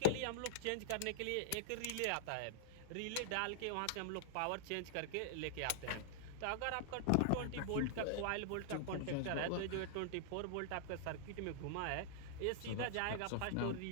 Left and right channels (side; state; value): both; different; correlation -0.01